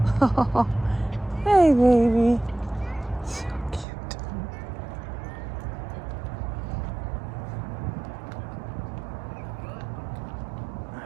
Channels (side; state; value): left; drops out; at 3.9 s